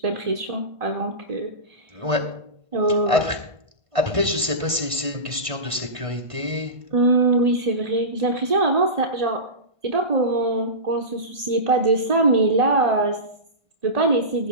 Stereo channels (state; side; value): late; left; 1.6 ms